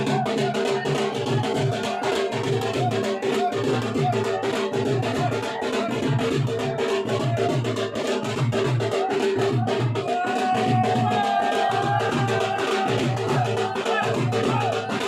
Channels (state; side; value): identical; both; correlation 1.00